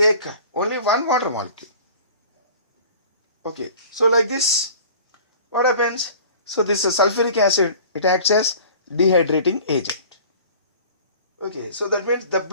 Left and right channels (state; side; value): inverted; both; correlation -0.44